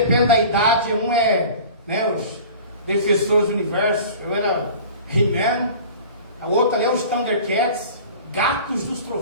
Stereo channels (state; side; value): inverted; both; correlation -0.41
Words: da idade, um é, né, os Defensores do Universo, eu era He-Man, o outro ali é os Thundercats, Gatos dos